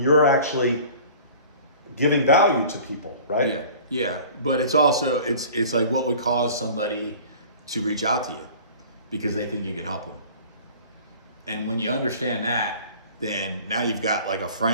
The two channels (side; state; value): both; inverted; correlation -0.45